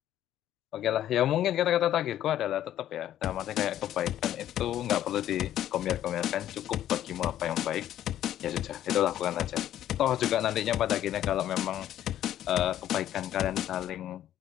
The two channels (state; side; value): quieter; right; 11.9 dB